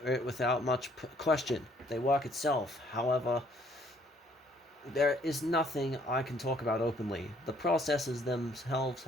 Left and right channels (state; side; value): normal; both; correlation 0.63